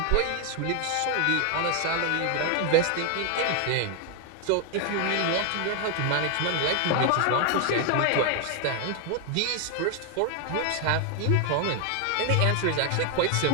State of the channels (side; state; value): both; different; correlation 0.00